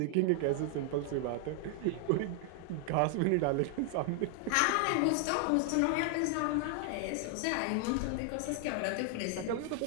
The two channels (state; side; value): different; both; correlation 0.00